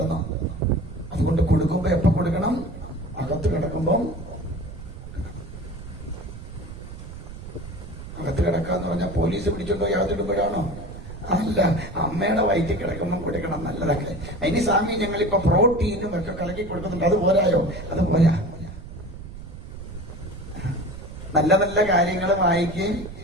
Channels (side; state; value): right; noise; rumble, 12 dB below the sound